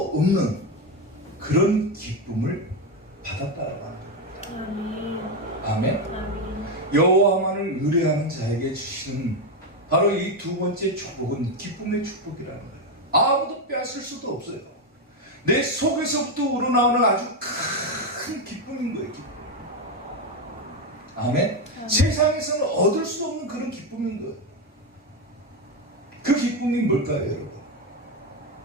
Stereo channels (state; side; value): normal; both; correlation 0.09